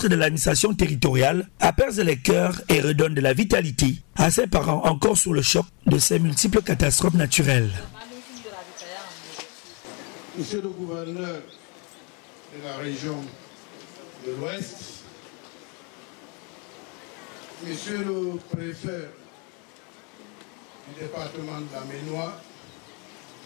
de l'administration territoriale apaise les cœurs et redonne de la vitalité à ces parents encore sous le choc de ces multiples catastrophes naturelles. Monsieur le gouverneur de la région de l'Ouest, Monsieur le préfet du département de la Ménois,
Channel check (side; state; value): right; quieter; 33.1 dB